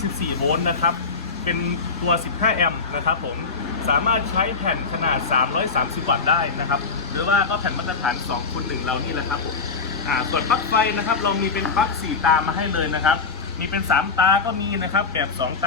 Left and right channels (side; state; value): right; quieter; 4.7 dB